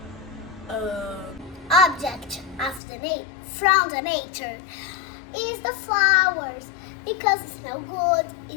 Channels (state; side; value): drops out; right; at 2.8 s